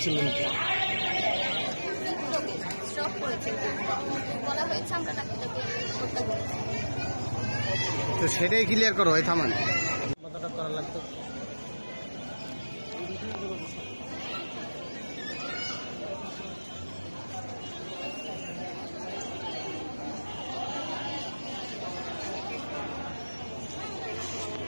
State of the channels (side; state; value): both; inverted; correlation -1.00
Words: স্ট্রোক করেছে বলা হয়েছে, আমরা তাকে হত্যা করেছি। তো সেটাই ক্লিয়ার করো, হয় থামান কতটা করা লাগতো?